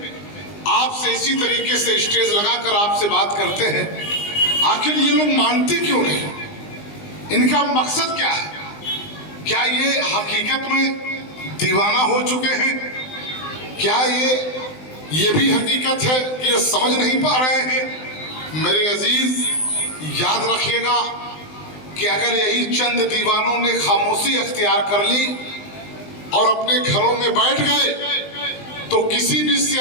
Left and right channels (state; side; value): late; right; 20 ms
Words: आपसे इसी तरीके से स्टेज लगाकर आपसे बात करते हैं। आखिर ये लोग मानते क्यों नहीं? इनका मकसद क्या है? क्या ये हकीकत में दीवाना हो चुके हैं? क्या ये भी हकीकत है कि ये समझ नहीं पा रहे हैं? मेरे अजीज, याद रखिएगा कि अगर यही चंद दीवानों ने खामोशी अख्तियार कर ली और अपने घरों में बैठ गए, तो किसी भी